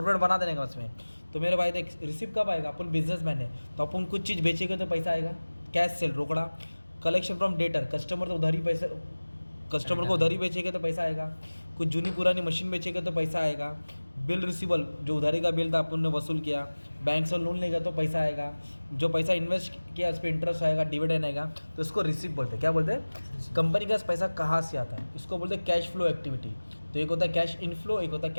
बना देने का उसमें। तो मेरे भाई देख, रिसिप्ट कब आएगा? अपन बिजनेसमैन है तो अपन कुछ चीज़ बेचेंगे तो पैसा आएगा, कैश सेल रोकड़ा। कलेक्शन फ्रॉम डेटर, कस्टमर तो उधारी पैसे, कस्टमर को उधारी बेचेंगे तो पैसा आएगा। कुछ जूनी पुरानी मशीन बेचेंगे तो पैसा आएगा। बिल रिसीवल, जो उधारी का बिल था अपन ने वसूल किया। बैंक से लोन लेगा तो पैसा आएगा। जो पैसा इन्वेस्ट किया उस पर इंटरेस्ट आएगा, डिविडेंड आएगा। तो इसको रिसिप्ट बोलते हैं। क्या बोलते हैं? कंपनी का पैसा कहाँ से आता है, इसको बोलते हैं कैश फ्लो एक्टिविटी। तो एक होता है कैश इनफ्लो, एक होता है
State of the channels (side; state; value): both; inverted; correlation -1.00